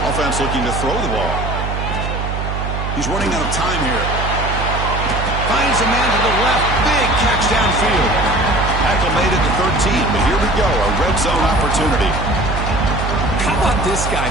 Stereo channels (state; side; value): noise; right; hum, 3 dB below the sound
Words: Offense looking to throw the ball. He's running out of time here. Finds a man to the left. Big catch downfield. Tackle made it to 13, but here we go, a red zone opportunity. How about this guy